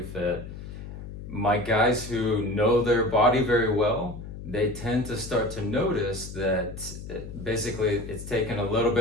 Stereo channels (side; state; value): left; noise; hum, 11 dB below the sound